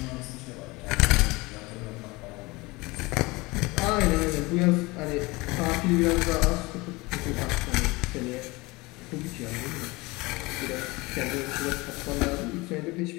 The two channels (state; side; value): quieter; right; 23.3 dB